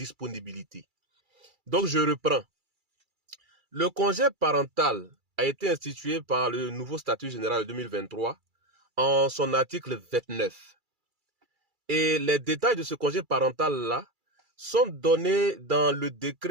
Donc je reprends. Le congé parental a été institué par le nouveau statut général de 2023 en son article 29. Et les détails de ce congé parental-là sont donnés dans le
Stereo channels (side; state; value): left; late; 2.3 ms